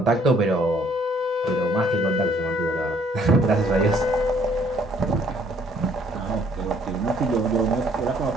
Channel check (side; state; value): both; normal; correlation 0.62